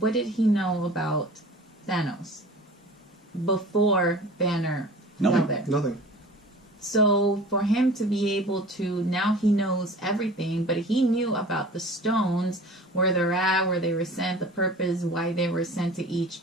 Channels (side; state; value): both; normal; correlation 0.42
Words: did he know about Thanos before Banner fell there? Nothing. So for him to be able to, now he knows everything, but he knew about the stones, where they're at, where they were sent, the purpose, why they were sent to